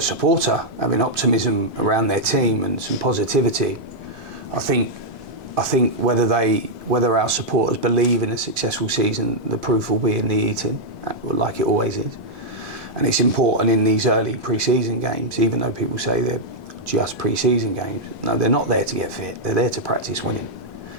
supporter, having optimism around their team and some positivity. I think whether our supporters believe in a successful season, the proof will be in the eating, like it always is. And it's important in these early pre-season games, even though people say they're just pre-season games. No, they're not there to get fit. They're there to practice winning,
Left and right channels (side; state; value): both; normal; correlation -0.04